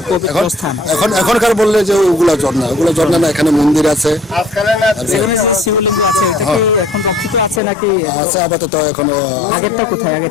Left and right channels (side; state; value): right; drops out; at 7.6 s